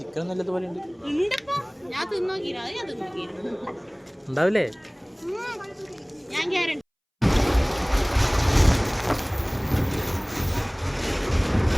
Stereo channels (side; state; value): both; identical; correlation 1.00